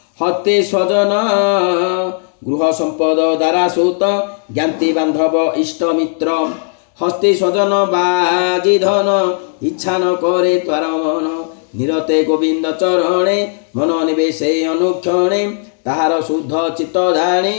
हति स्वजन, गृह संपद द्वारा सुत, ज्ञाति बांधव इष्टमित्र। হস্তি স্বজন বাজি ধন ইচ্ছা ন করে তার মন নিরতে গোবিন্দ চরণে মন নিবেশে অনুক্ষণে তাহার শুদ্ধ চিত্ত জানি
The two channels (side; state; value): right; silent; digital silence